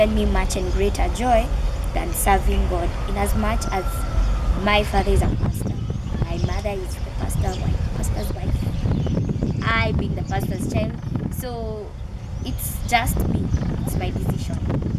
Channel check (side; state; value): both; identical; correlation 1.00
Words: me much and greater joy than serving God. In as much as my father is a pastor, my mother mother is the pastor's wife, I being the pastor's child. So it's just me, it's my decision,